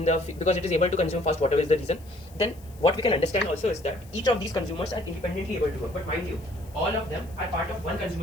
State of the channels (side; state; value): left; noise; hiss, 25 dB below the sound